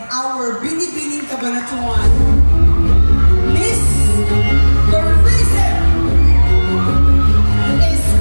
our Binibining Cabanatuan Miss Tourism is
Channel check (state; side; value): inverted; both; correlation -1.00